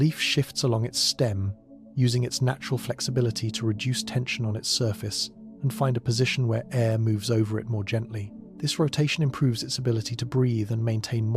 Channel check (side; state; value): both; identical; correlation 1.00